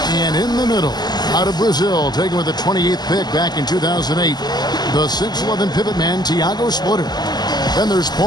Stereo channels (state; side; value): late; right; 0.20 ms